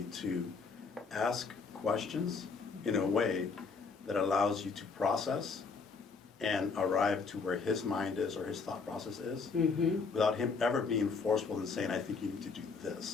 to ask questions in a way that allows you to process and arrive to where his mind is or his thought process is, without him ever being forceful and saying, I think you need to do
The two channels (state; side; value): quieter; right; 4.8 dB